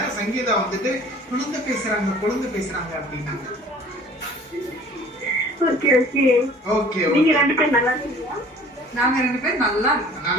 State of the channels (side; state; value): both; normal; correlation 0.49